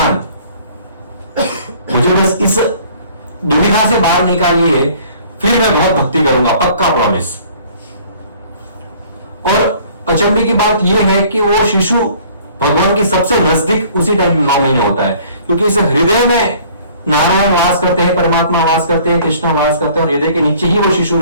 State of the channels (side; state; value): both; inverted; correlation -0.54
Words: मुझे बस इस दुविधा से बाहर निकालिए, फिर मैं बहुत भक्ति करूंगा, पक्का प्रॉमिस। और अचंभे की बात यह है कि वो शिशु भगवान की सबसे नजदीक उसी टाइम 9 महीने होता है, क्योंकि इस हृदय में नारायण वास करते हैं, परमात्मा वास करते हैं, कृष्ण वास करते हैं, और हृदय के नीचे ही वो शिशु